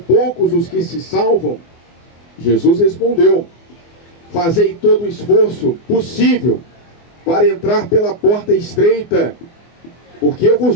os que se salvam? Jesus respondeu: Fazei todo o esforço possível para entrar pela porta estreita, porque eu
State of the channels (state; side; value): late; right; 24 ms